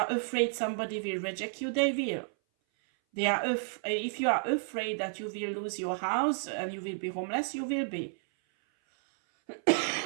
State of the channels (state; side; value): silent; left; 57 dB below the other